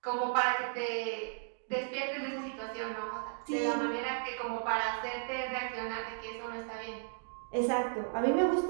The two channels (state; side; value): silent; left; digital silence